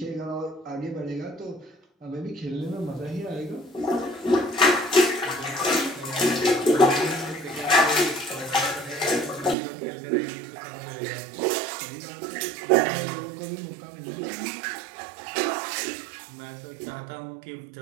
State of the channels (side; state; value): left; drops out; at 9.6 s